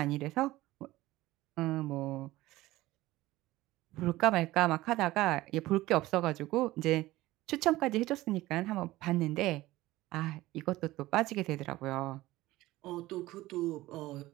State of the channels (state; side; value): quieter; left; 17.5 dB